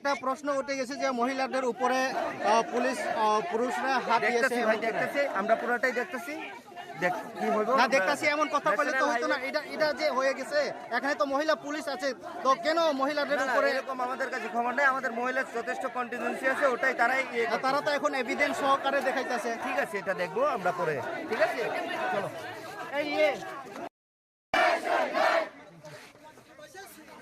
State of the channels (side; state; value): both; identical; correlation 1.00